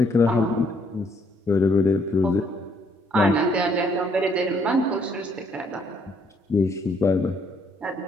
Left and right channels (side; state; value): both; normal; correlation 0.68